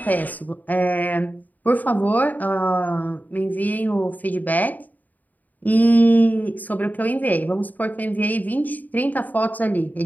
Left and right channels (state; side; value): late; right; 0.081 ms